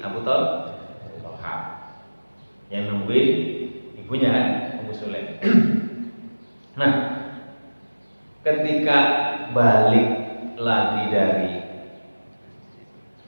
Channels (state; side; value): inverted; both; correlation -1.00